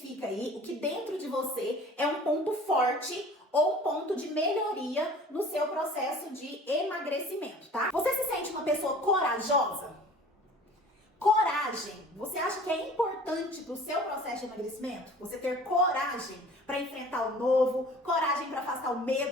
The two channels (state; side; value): normal; both; correlation 0.46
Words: aí o que dentro de você é um ponto forte ou um ponto de melhoria no seu processo de emagrecimento, tá? Você se sente uma pessoa corajosa? Coragem. Você acha que é importante para o seu processo de emagrecimento? Você ter coragem para enfrentar o novo, coragem para afastar o